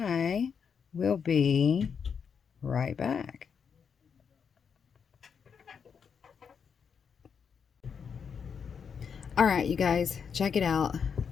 will be right back. All right, you guys, check it out.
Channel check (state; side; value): quieter; right; 6.6 dB